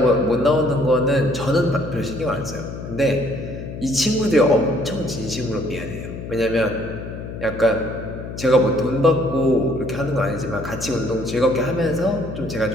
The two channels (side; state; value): left; noise; hum, 9 dB below the sound